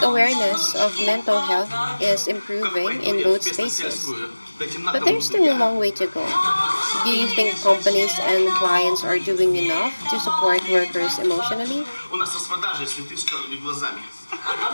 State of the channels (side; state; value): both; inverted; correlation -1.00